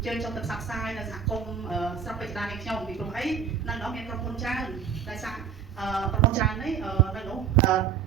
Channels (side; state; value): left; quieter; 7.4 dB